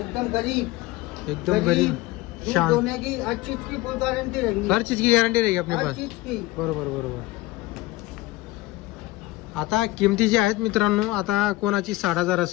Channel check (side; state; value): right; quieter; 18.4 dB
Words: गरीब, एकदम गरीब दूध शांत, दोने की हर चीज की फुल गारंटी रहेगी, हर चीज की गॅरंटी रहेगी अपने हर पास। चीज की। बरोबर बरोबर। आता किमती जी आहेत मित्रांनो, आता कोणाची 60,000